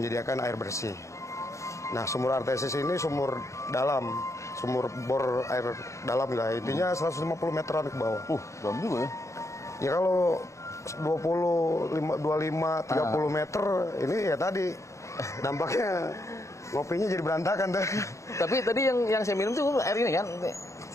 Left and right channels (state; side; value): late; right; 0.14 ms